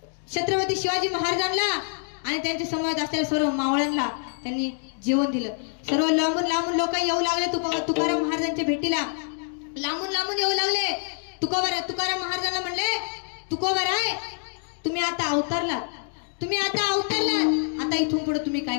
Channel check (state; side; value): silent; right; 59 dB below the other